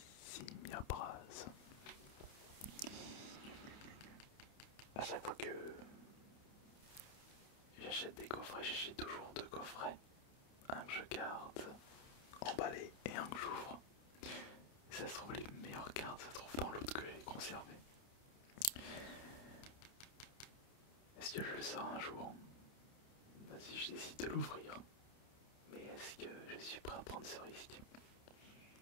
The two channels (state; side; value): late; right; 29 ms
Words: Simiabras. À chaque fois que j'achète des coffrets, j'achète toujours 2 coffrets. Un que je garde emballé et un que j'ouvre. Ça se trouve, les meilleures cartes se trouvent dans l'autre que j'ai conservé. Est-ce que je le sors un jour? Si je décide de l'ouvrir. Mais est-ce que je suis prêt à prendre ce risque?